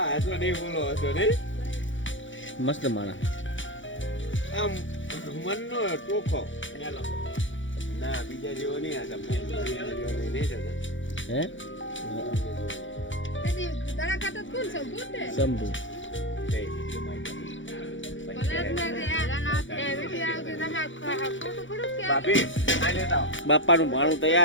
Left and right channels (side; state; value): right; late; 0.56 ms